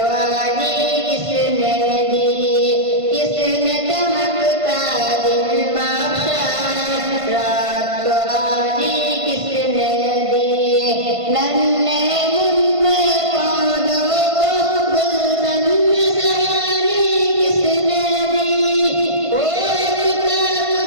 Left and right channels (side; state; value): left; late; 1.5 ms